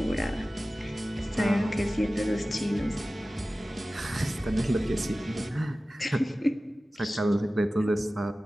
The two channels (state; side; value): normal; both; correlation 0.96